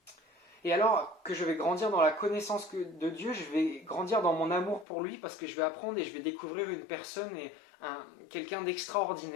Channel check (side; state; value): right; drops out; at 4.9 s